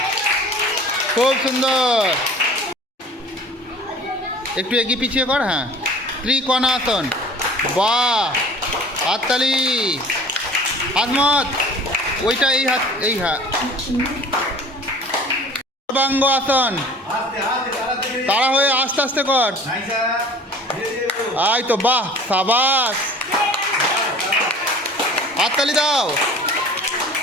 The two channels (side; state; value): both; normal; correlation 0.45